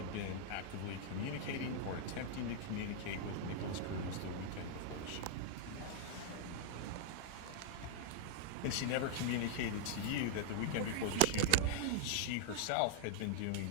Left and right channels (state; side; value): different; both; correlation -0.01